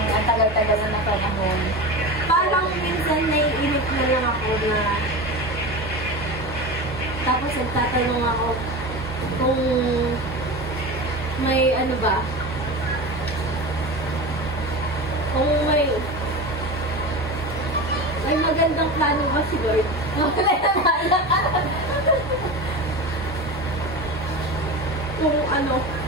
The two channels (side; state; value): both; normal; correlation 0.27